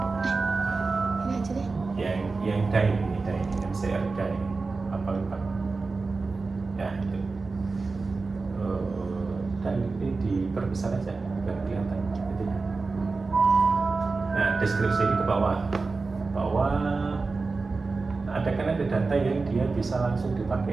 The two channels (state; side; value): quieter; left; 4.0 dB